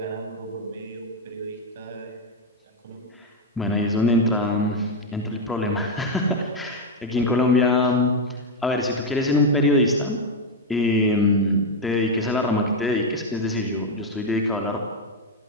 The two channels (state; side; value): normal; both; correlation 0.03